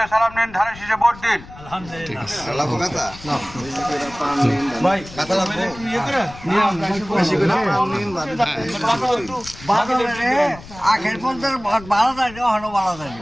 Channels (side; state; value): left; noise; rumble, 17 dB below the sound